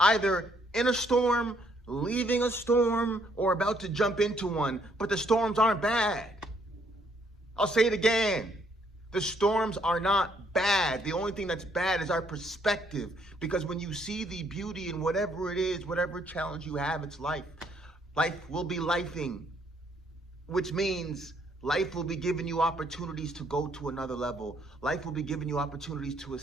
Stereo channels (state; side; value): normal; both; correlation 0.69